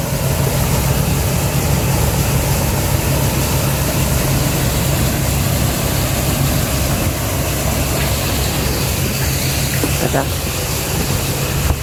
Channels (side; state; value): both; identical; correlation 1.00